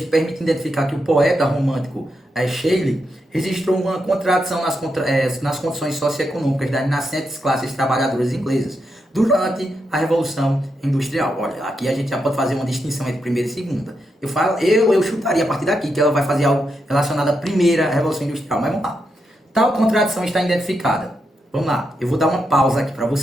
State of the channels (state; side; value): normal; both; correlation 0.84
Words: permite identificar que o poeta romântico Shelley registrou uma contradição nas condições socioeconômicas das nascentes classes trabalhadoras inglesas durante a Revolução Industrial. Olha, aqui a gente já pode fazer uma distinção entre primeira e segunda. Eu chutaria a partir daqui que ela vai fazer algo relacionado à primeira Revolução Industrial, mas vamos lá. Tal contradição está identificada. Vamos lá, eu vou dar uma pausa aqui para